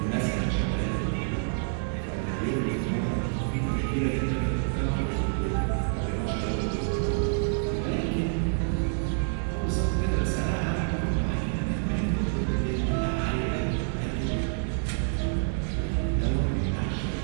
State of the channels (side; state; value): left; silent; digital silence